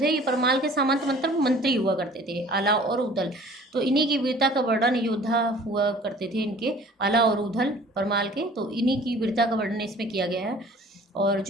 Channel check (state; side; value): normal; both; correlation 0.49